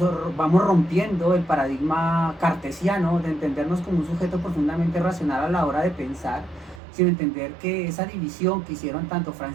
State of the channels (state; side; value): drops out; left; at 6.8 s